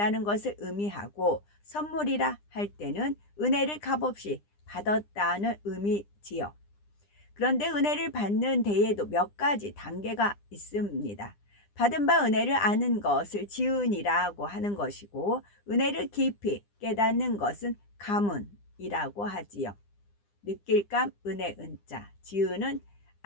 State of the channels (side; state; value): right; late; 9.9 ms